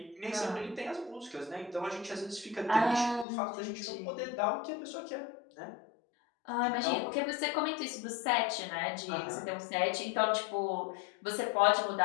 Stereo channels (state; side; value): drops out; right; at 3.2 s